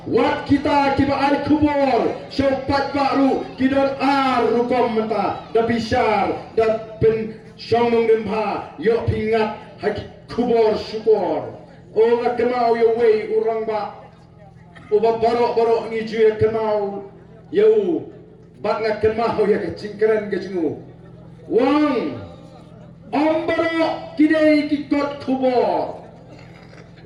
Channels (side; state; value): both; identical; correlation 1.00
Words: Wat kita kiba ar kubur, syaupat baru kidon ar rukom menta, da bisar, da pen syomong demha, yo pingat haki kubur syukur. O nak kenal yo wei orang ba, uba barok ngiju ya kenal, yo bat nak kenal ya kecingkeren kecinggu. Wang, barok kidai kikot kubur.